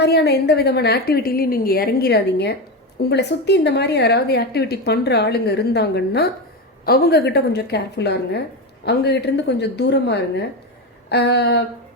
எந்த விதமான ஆக்டிவிட்டிலையும் நீங்கள் இறங்கிடாதீங்க. உங்களை சுற்றி இந்த மாதிரி யாராவது ஆக்டிவிட்டி பண்ணுற ஆளுங்க இருந்தாங்கன்னா அவங்கக்கிட்ட கொஞ்சம் கேர்ஃபுல்லாக இருங்க, அவங்ககிட்டேருந்து கொஞ்சம் தூரமாக இருங்க.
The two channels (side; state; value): both; normal; correlation 0.16